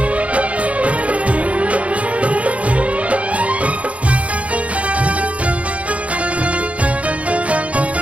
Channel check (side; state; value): left; late; 0.065 ms